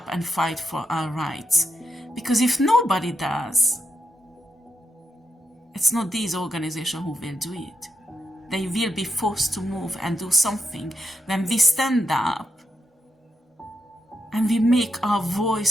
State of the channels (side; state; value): both; normal; correlation 0.85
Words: and fight for our rights. Because if nobody does, it's not these organizations who will do it. They will be forced to move and do something when we stand up and we make our